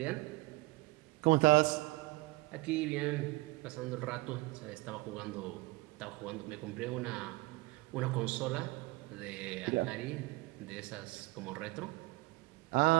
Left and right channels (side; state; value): left; quieter; 23.0 dB